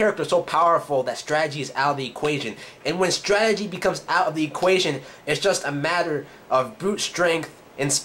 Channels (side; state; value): both; identical; correlation 1.00